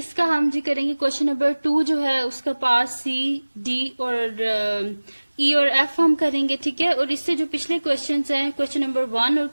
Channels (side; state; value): both; inverted; correlation -1.00